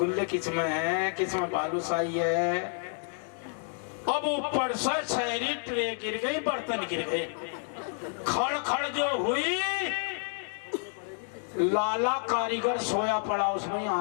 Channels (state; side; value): silent; right; 58 dB below the other